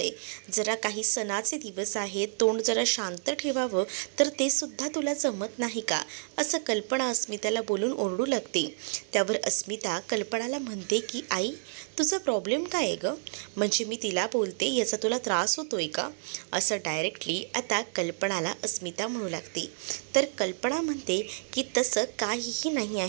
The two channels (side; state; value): left; silent; digital silence